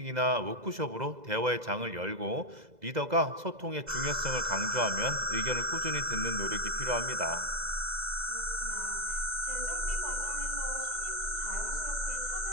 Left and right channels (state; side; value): late; left; 2.0 ms